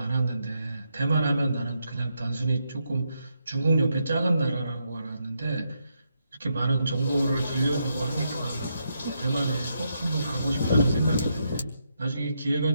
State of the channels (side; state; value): both; inverted; correlation -0.80